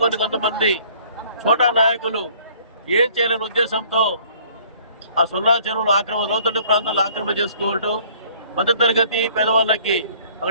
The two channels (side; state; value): both; inverted; correlation -0.56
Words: కొంతమంది చోటా నాయకులు ఏం చేయాలని ఉద్దేశంతో ఆ సొన్నాల చెరువులు లోతట్టు ప్రాంతాల్లో ఆక్రమణ చేసుకుంటూ మధ్యతరగతి పేదవాళ్ళకి